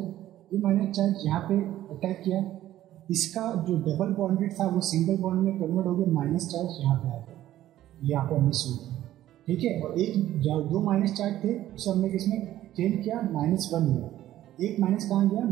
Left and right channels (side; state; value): left; quieter; 13.4 dB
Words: ये माइनस चार्ज यहाँ पे अटैक किया, इसका जो डबल बॉन्डेड था वो सिंगल बॉन्ड में कन्वर्ट हो गया, माइनस चार्ज यहाँ पे आ गया, यहाँ पे मिस हो गया, ठीक है। और एक दो माइनस चार्ज थे उसे हमने किसमें चेंज किया, -1 में, एक माइनस कहाँ गया,